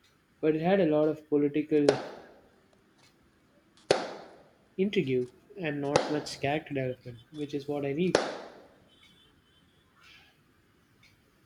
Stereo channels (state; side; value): identical; both; correlation 1.00